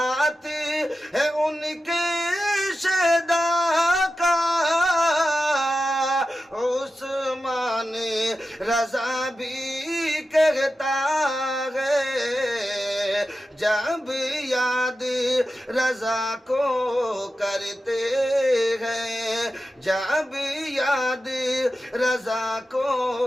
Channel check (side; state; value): both; normal; correlation 0.92